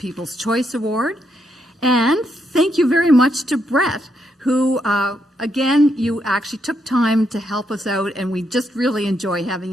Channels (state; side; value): normal; both; correlation 0.78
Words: Choice Award. And thank you very much to Brett, who, again, you actually took time to help us out, and we just really enjoy